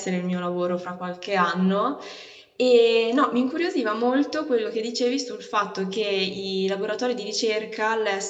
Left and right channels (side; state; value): both; identical; correlation 1.00